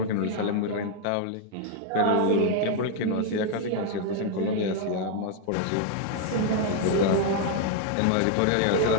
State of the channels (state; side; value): different; both; correlation 0.00